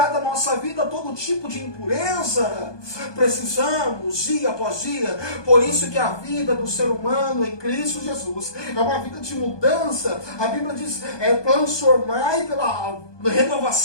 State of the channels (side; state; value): right; late; 1.2 ms